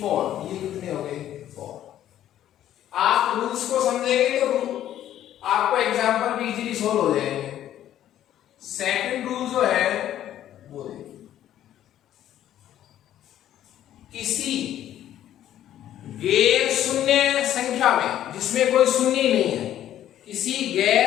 4। ये कितने हो गए? 4। आप रूल्स को समझेंगे तो आपको एग्जांपल भी इजीली सोल्व हो जाएंगे।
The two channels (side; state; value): right; quieter; 11.8 dB